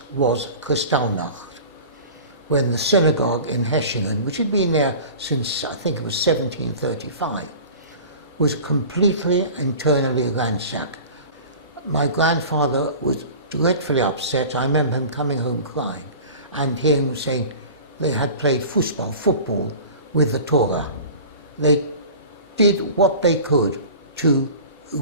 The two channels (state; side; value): inverted; both; correlation -0.39